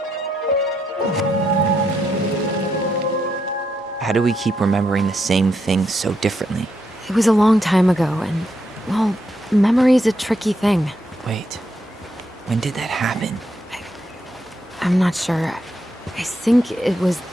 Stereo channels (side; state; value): both; normal; correlation 0.79